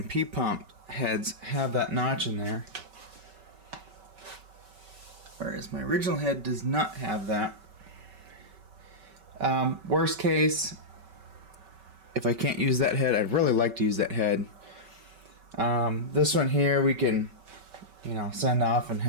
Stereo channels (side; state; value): left; late; 5.2 ms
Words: P-pump heads have that notch in there, whereas my original head does not have that. Worst case, if I can't use that head, I'd really like to use that head. This one here we can, you know, send off and